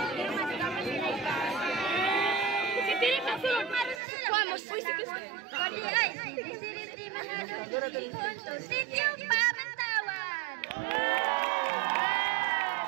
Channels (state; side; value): drops out; left; at 4.0 s